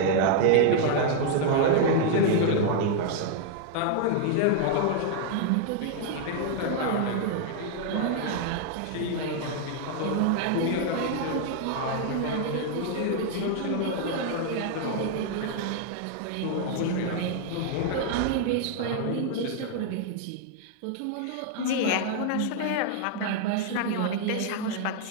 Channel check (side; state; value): both; different; correlation 0.00